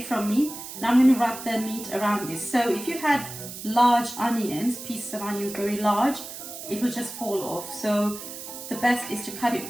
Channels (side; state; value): right; noise; hiss, 11 dB below the sound